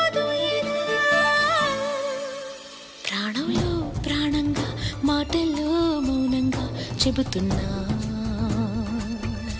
ఇదా. ప్రాణంలో ప్రాణంగా మాటల్లో మౌనంగా చెబుతున్నా,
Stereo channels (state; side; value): identical; both; correlation 1.00